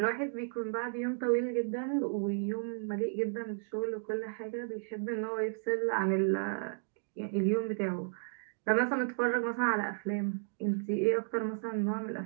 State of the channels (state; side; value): silent; left; digital silence